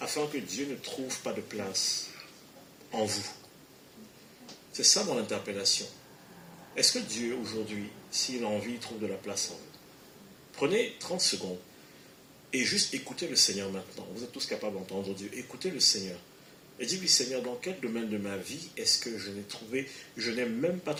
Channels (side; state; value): both; identical; correlation 1.00